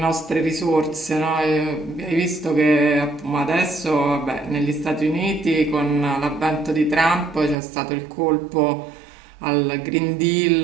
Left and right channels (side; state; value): left; drops out; at 7.6 s